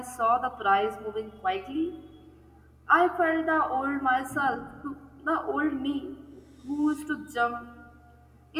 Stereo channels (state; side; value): identical; both; correlation 1.00